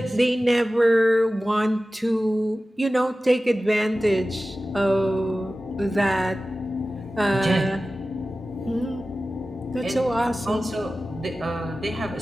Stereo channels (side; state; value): both; normal; correlation 0.95